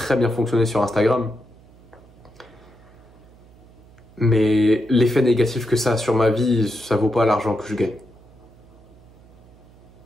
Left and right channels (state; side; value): noise; right; hum, 25 dB below the sound